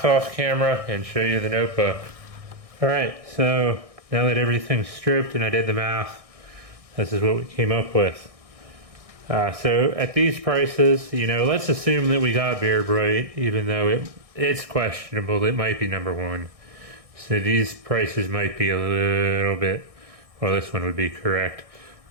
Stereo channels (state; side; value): late; left; 1.6 ms